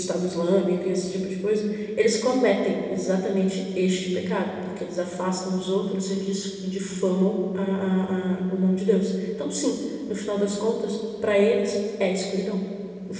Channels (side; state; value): both; identical; correlation 1.00